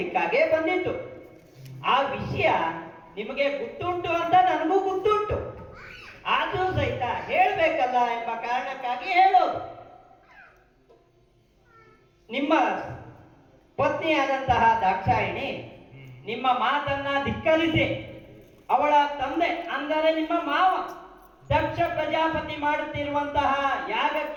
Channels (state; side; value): identical; both; correlation 1.00